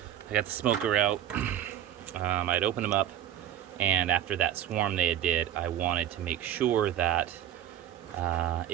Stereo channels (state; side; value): quieter; left; 11.0 dB